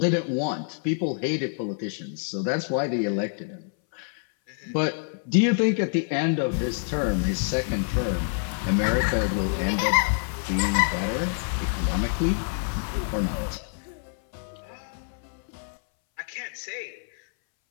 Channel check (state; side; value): silent; right; 60 dB below the other